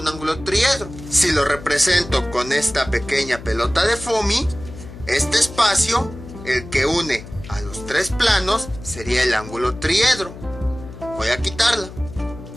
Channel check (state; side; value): noise; left; hum, 14 dB below the sound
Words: ángulo triedro. Si lo represento con esta pequeña pelota de foamy, este espacio, el que une a los tres planos, sería el ángulo triedro. Voy a quitarla.